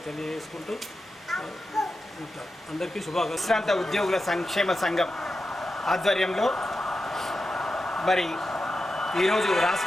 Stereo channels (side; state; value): both; normal; correlation 0.90